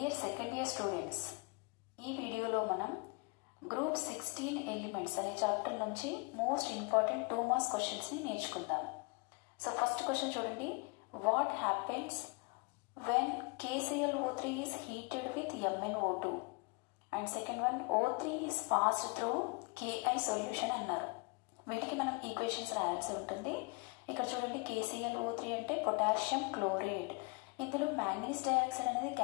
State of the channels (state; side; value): quieter; right; 29.6 dB